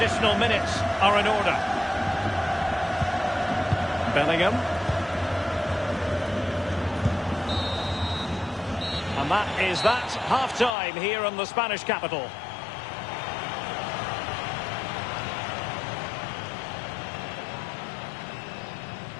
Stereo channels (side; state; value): right; drops out; at 10.8 s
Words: minutes are in order. Bellingham. And that is that, half-time here in the Spanish capital.